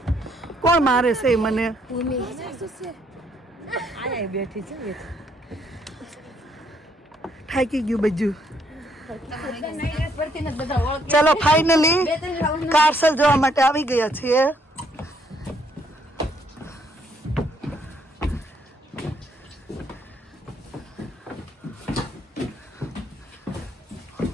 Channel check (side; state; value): both; normal; correlation 0.69